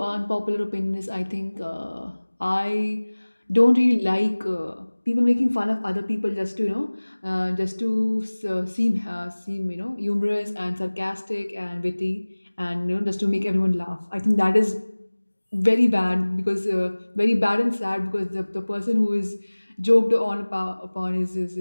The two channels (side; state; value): both; inverted; correlation -1.00